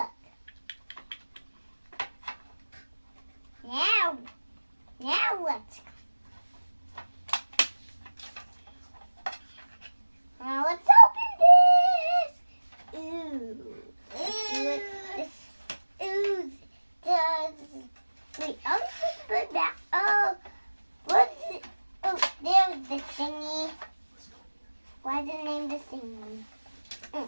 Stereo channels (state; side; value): inverted; both; correlation -1.00